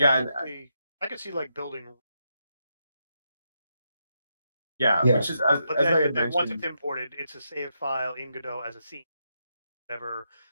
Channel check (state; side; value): inverted; both; correlation -0.83